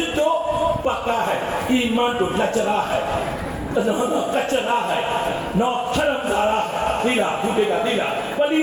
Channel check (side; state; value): both; identical; correlation 1.00